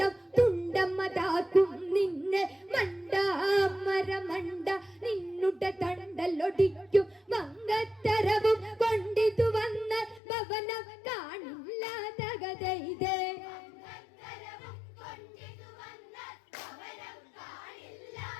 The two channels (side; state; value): right; drops out; at 10.2 s